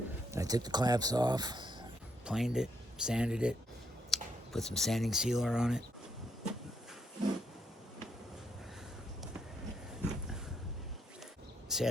I took the clamps off, planed it, sanded it, put some sanding sealer on it.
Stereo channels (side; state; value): both; normal; correlation 0.76